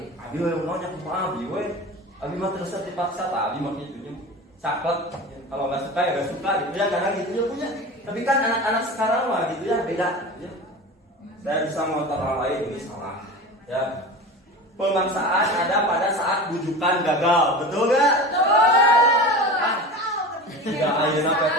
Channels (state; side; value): normal; both; correlation 0.31